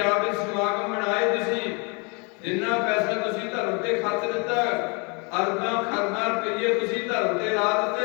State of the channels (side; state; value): right; quieter; 32.3 dB